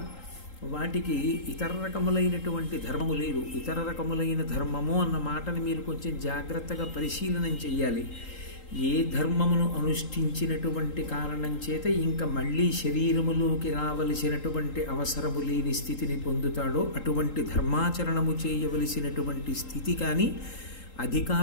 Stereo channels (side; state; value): right; late; 3.8 ms